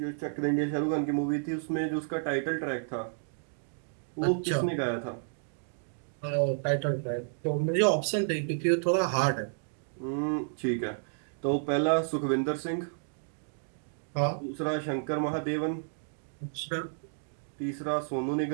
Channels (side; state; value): left; silent; digital silence